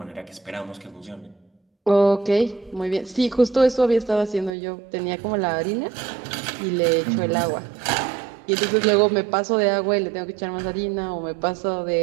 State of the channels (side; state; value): left; drops out; at 4.5 s